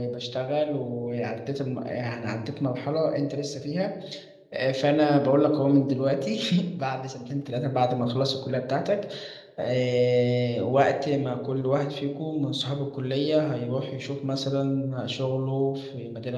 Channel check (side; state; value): both; identical; correlation 1.00